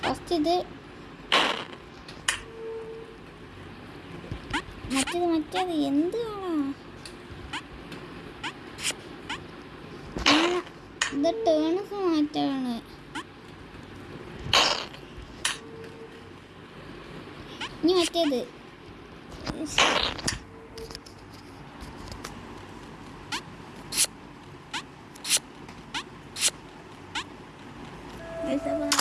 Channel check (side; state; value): both; identical; correlation 1.00